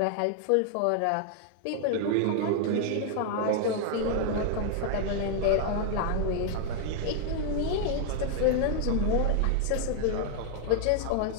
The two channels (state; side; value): different; both; correlation 0.00